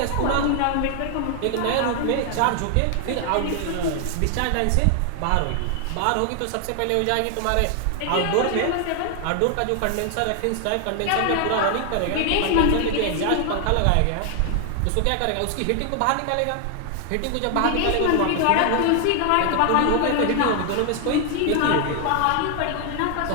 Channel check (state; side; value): different; both; correlation 0.00